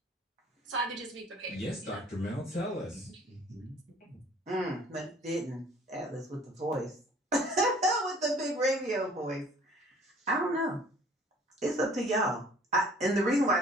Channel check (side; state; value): both; normal; correlation 0.53